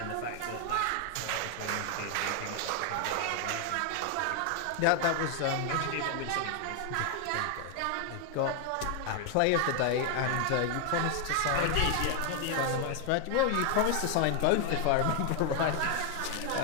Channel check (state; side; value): different; both; correlation 0.00